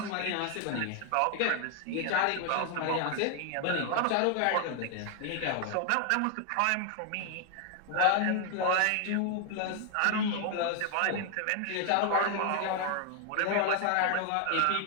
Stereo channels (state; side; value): different; both; correlation 0.00